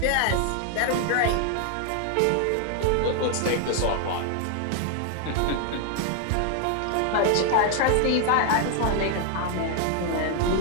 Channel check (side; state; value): both; different; correlation 0.00